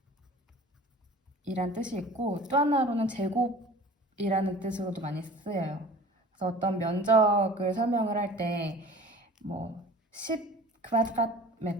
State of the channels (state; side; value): normal; both; correlation 0.42